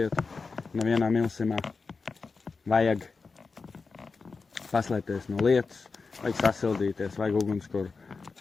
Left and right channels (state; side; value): quieter; right; 4.5 dB